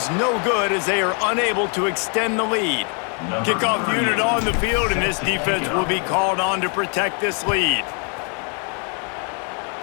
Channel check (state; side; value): quieter; right; 39.6 dB